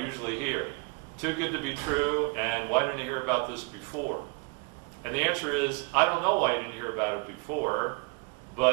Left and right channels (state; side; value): quieter; left; 31.4 dB